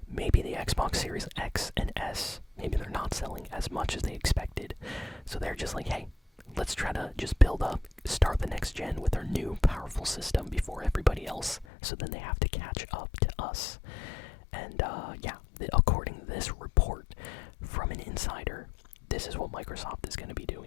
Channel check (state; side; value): drops out; right; at 11.7 s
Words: Maybe the Xbox Series X and S, maybe they're not selling as much as they expected. So they're just like, hey, let's try to just build up, start the next gen with our new powerful system before everybody else, so then they have to catch up to us. And yeah, according to this report from an insider, this is what Microsoft is going to be